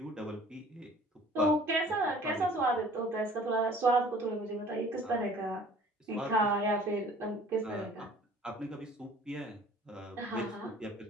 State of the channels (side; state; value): both; normal; correlation 0.51